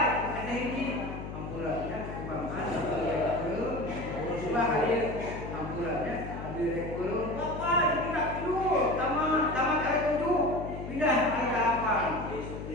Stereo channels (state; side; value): noise; left; hum, 8 dB below the sound